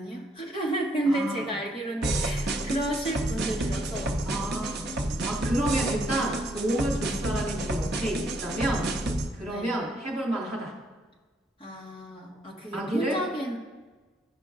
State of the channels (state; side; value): normal; both; correlation 0.72